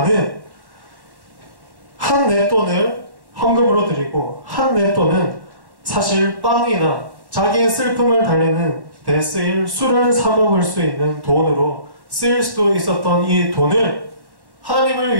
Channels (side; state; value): left; late; 1.1 ms